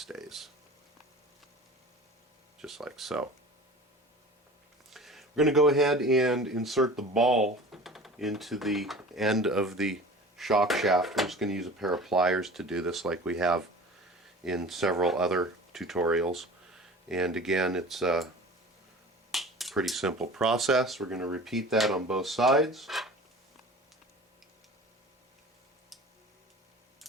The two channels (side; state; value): both; normal; correlation 0.40